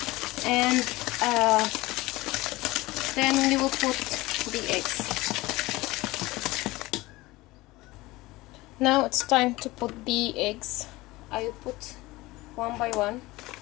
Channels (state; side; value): quieter; right; 20.0 dB